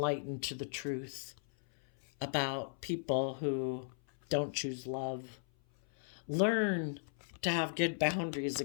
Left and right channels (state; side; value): silent; right; 53 dB below the other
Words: to the truth about people who don't choose love. Learn to have good boundaries